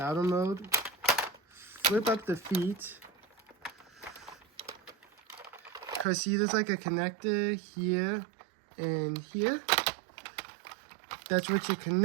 mode. Flip up the feet. Cause see, there's like a connector here and here. That's what you're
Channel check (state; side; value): drops out; left; at 6.1 s